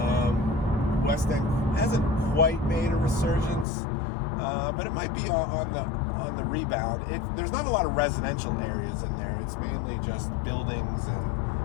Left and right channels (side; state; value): right; drops out; at 3.7 s